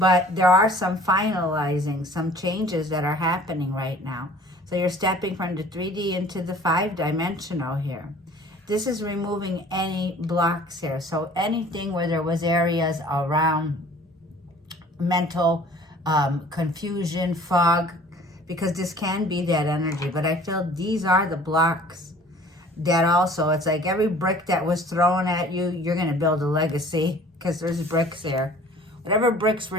there are some finalizing, some changes that are happening right now. So you're stepping from the 3D into the 5-dimensional here. This is removing any blocks here. So anything where there was areas around mental confusion, fog, because this can be that energy. But I feel these are the blocks that also, it's like every brick that was thrown at you, you're going to build a legacy because there's bricks there. Whatever bricks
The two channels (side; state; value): both; normal; correlation 0.50